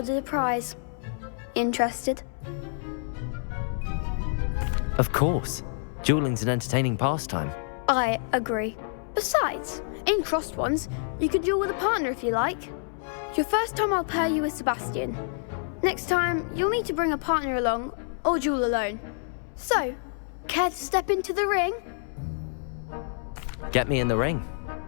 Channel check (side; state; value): right; silent; 60 dB below the other